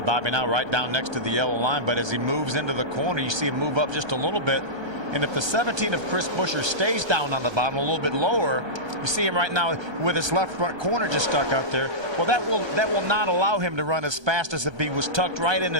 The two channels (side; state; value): left; late; 1.3 ms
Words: Bobby now right down next to the yellow line, but as he moves into the corner, you see him move up just a little bit. And if the 17 of Chris Buescher stays down on the bottom a little bit lower, you see him right now with his left front corner just stuck out there. Well, that will not allow him to run as fast as if he was tucked right in